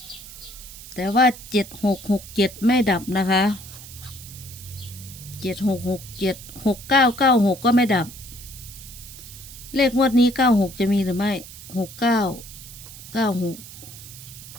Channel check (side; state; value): right; noise; hiss, 15 dB below the sound